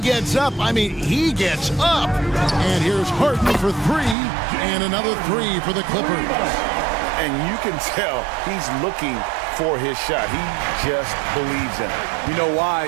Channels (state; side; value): drops out; left; at 4.2 s